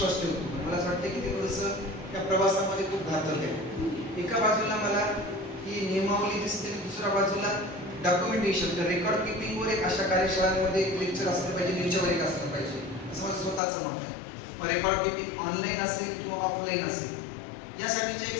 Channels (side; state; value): right; drops out; at 13.6 s